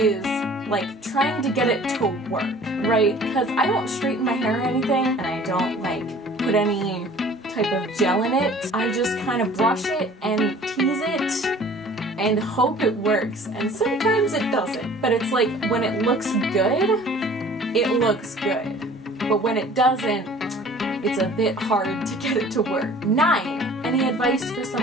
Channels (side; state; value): both; normal; correlation 0.49